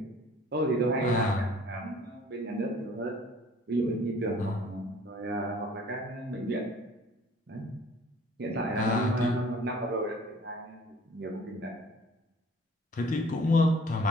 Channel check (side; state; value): both; normal; correlation 0.52